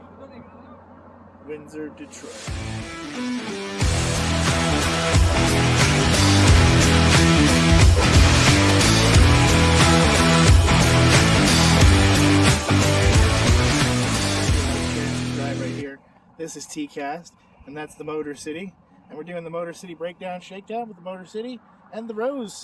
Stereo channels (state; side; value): identical; both; correlation 1.00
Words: Windsor, Detroit. Right here. This is T-Cast, and that's the Motor City. And we're doing the Motor City breakdown shakedown with the Motor City and the Rose